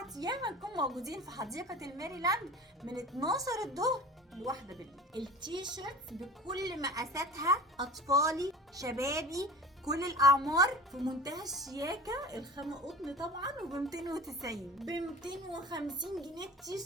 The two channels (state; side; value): normal; both; correlation 0.38